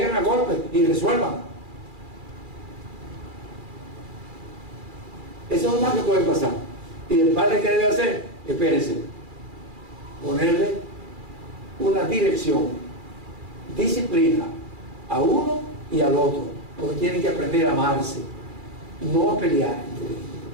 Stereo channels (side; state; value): left; late; 2.4 ms